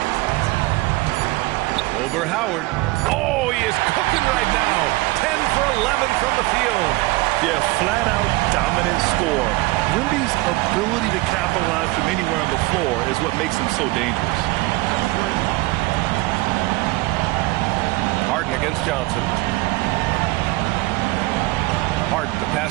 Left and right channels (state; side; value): quieter; left; 21.2 dB